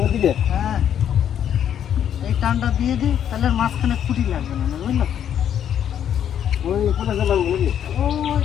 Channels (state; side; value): quieter; right; 9.5 dB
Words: হ্যাঁ, এই টানটা দিয়ে দিই, তাহলে আর মাঝখানে খুঁটি লাগবে না, বুঝলো? ওই কোথা গেলাম নাকি ওই